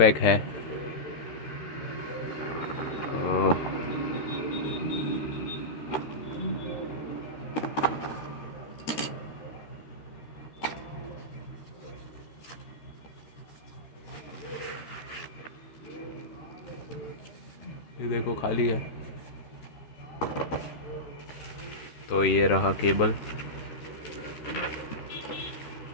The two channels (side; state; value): right; late; 13 ms